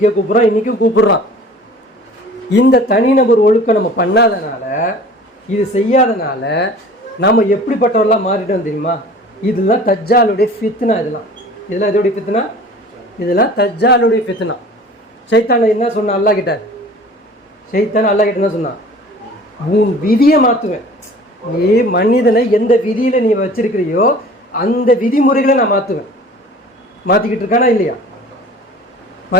கூப்பிடுறான், இன்னைக்கும் கூப்பிடுறான். இந்த தனிநபர் ஒழுக்கம் நம்ம பண்ணாதனால, இது செய்யாதனால நம்ம எப்படிப்பட்டவர்களாக மாறிட்டோம் தெரியுமா? இதெல்லாம் தஜ்ஜாலுடைய ஃபித்னா. இதெல்லாம் எதோடைய ஃபித்னா? இதெல்லாம் தஜ்ஜாலுடைய ஃபித்னா. ஷைத்தான் என்ன சொன்னான் அல்லாஹ் கிட்ட? ஷைத்தான் அல்லாஹ் கிட்ட என்ன சொன்னான்? உன் விதியை மாற்றுவேன். நீ மனிதனை எந்த விதியில நீ வச்சிருக்கிறியோ அந்த விதிமுறைகளை நான் மாற்றுவேன். மாற்றிக்கிட்டு இருக்கானா இல்லையா?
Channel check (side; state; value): both; normal; correlation 0.45